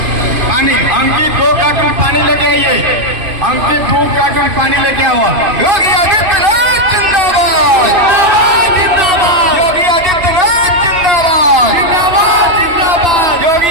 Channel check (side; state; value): left; late; 2.9 ms